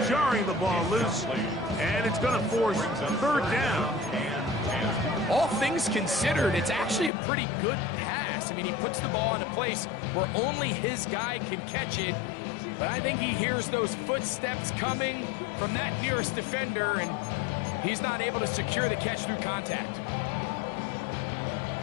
jarring the ball loose. And it's going to force third down. All things considered, it's actually a pretty good pass. I mean, he puts the ball in a place where only his guy can catch it. But I think he hears those footsteps coming from that nearest defender, and he's not able to secure the catch through contact.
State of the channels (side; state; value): right; drops out; at 7.1 s